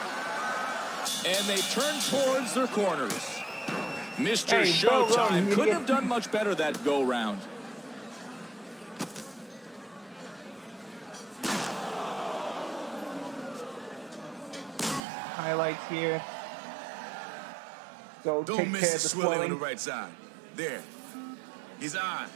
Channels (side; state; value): left; drops out; at 15.0 s